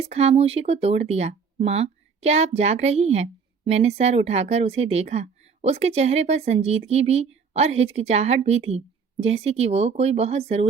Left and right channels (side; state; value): left; quieter; 5.7 dB